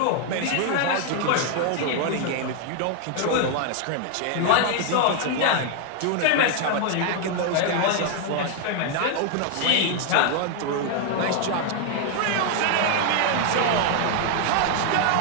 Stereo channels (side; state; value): both; different; correlation 0.00